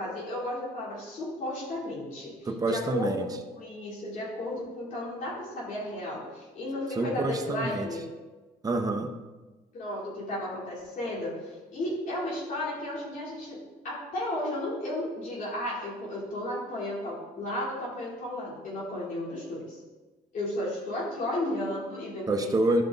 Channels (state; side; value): normal; both; correlation 0.54